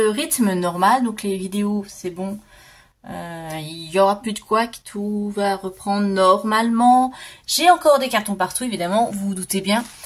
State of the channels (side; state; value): both; identical; correlation 1.00